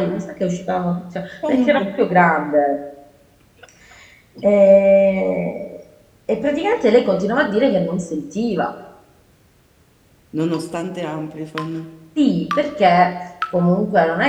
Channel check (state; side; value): identical; both; correlation 1.00